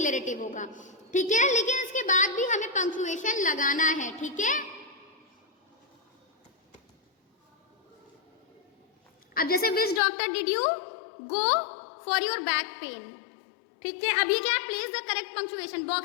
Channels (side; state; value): right; drops out; at 10.0 s